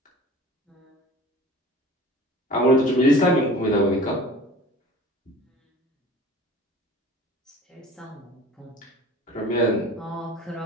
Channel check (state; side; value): normal; both; correlation 0.42